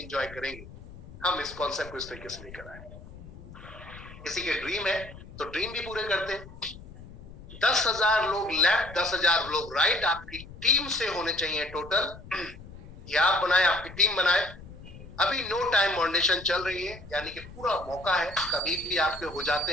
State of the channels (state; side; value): noise; left; rumble, 16 dB below the sound